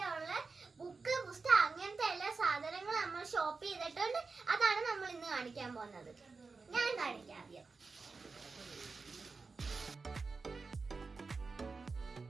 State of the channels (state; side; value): quieter; left; 4.3 dB